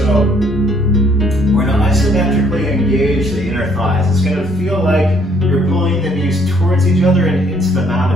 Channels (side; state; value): both; normal; correlation 0.65